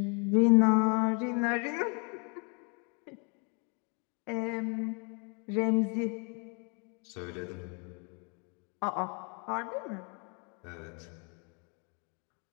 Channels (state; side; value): quieter; right; 34.9 dB